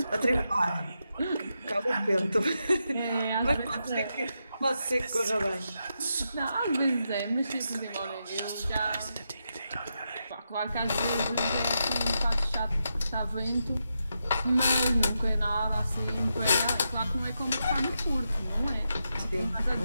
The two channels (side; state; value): both; inverted; correlation -0.85